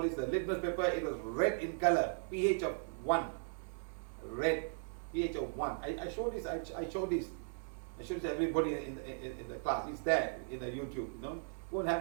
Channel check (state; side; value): silent; left; digital silence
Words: this? The litmus paper. It was red in color, pH of 1. Red, pH of 1. I showed this. I showed this. I showed this to everybody in the class. It's there in the YouTube. Go and have